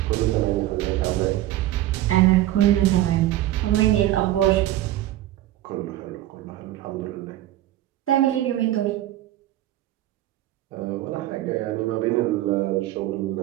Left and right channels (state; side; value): quieter; left; 14.4 dB